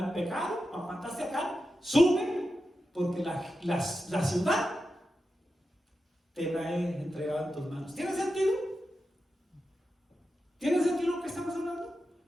pecado, mataste a Acán, sube, porque la ciudad te la he entregado en tus manos. ¿Tiene sentido? ¿Tiene sentido lo que estamos hablando?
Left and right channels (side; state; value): both; normal; correlation 0.90